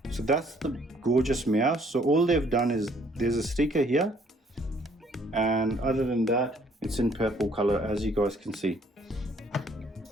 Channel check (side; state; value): both; normal; correlation 0.63